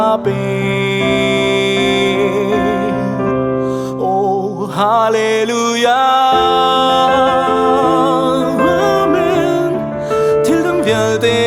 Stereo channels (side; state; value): both; identical; correlation 1.00